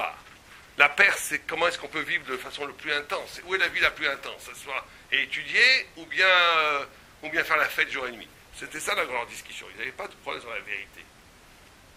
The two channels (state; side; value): identical; both; correlation 1.00